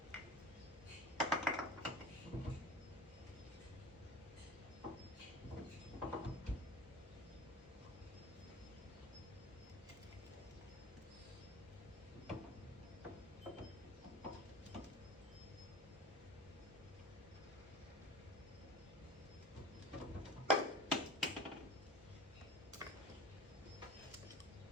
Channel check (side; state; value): both; normal; correlation 0.35